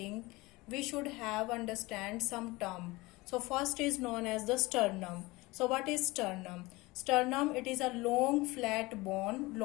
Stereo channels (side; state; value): right; quieter; 22.0 dB